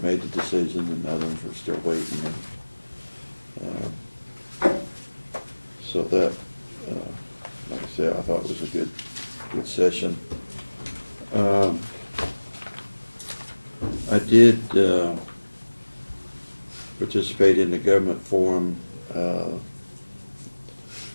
made the decision, and others were still waiting. So that, like I said, I thought it was a good session. I did participate in the government forum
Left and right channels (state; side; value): inverted; both; correlation -1.00